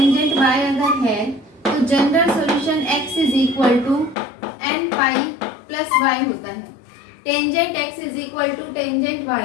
y अगर है तो general solution x is equal to n π plus y होता है। Tangent x is equal to tangent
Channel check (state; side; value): drops out; right; at 4.2 s